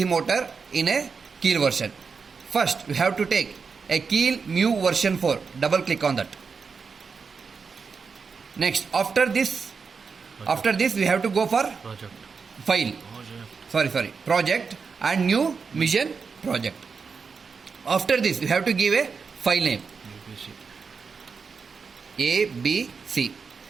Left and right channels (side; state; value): left; quieter; 5.4 dB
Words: motor in a Keel version. First we have to take a Keel Mu version 4, double click on that. Next, after this we have to go for Project. file. Project and new mission project. After this, we have to give a file name ABC. ABC. Save.